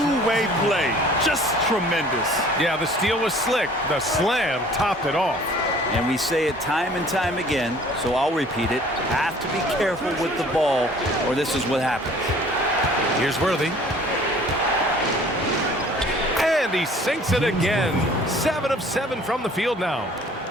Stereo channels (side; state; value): both; normal; correlation 0.52